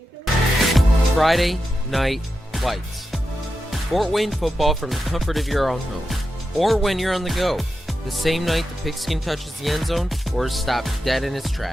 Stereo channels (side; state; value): both; normal; correlation 0.89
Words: Friday Night Lights. Fort Wayne football from the comfort of your own home. Or when you're on the go. The same night the pigskin touches the end zone or is stopped dead in its